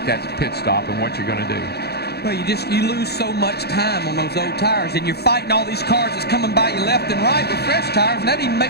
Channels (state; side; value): late; right; 0.47 ms